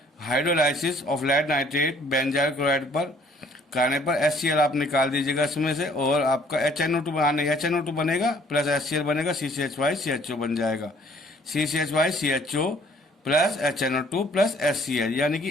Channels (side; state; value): both; normal; correlation 0.59